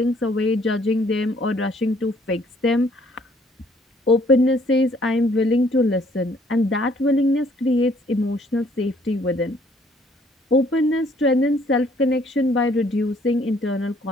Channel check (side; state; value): both; normal; correlation 0.62